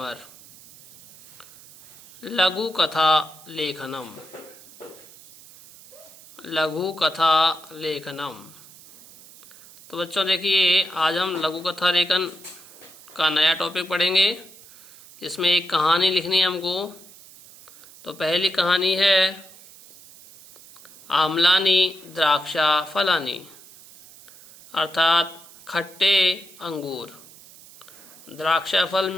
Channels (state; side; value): noise; right; hiss, 21 dB below the sound